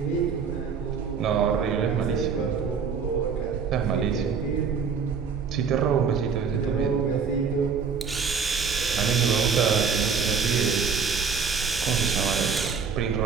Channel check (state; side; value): quieter; left; 5.9 dB